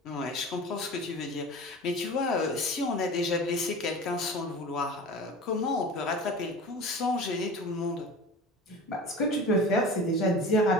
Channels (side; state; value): both; normal; correlation 0.36